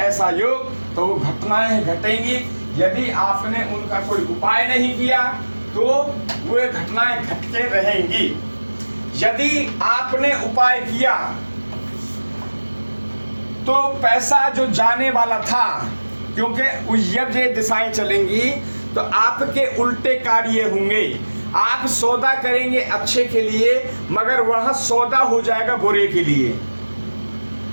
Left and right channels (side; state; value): both; inverted; correlation -1.00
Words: ऐसा योग तो वो घटनाएं घटेंगी। यदि आपने उनका कोई उपाय नहीं किया तो वे घटनाएं घटते रहेंगी। यदि आपने उपाय किया तो पैसा जो जाने वाला था, क्योंकि जब ये दिशाएं चलेंगी तो आपके उल्टे कार्य होंगे। आप सौदा करेंगे अच्छे के लिए, मगर वह सौदा हो जाएगा बुरे के लिए।